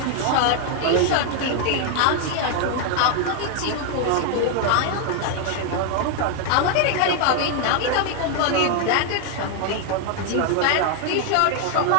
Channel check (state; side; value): different; both; correlation 0.00